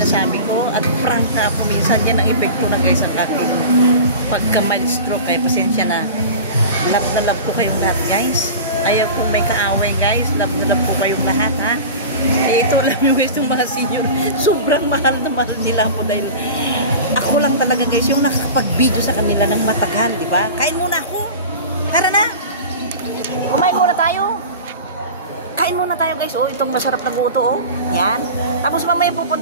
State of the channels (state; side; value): inverted; both; correlation -0.33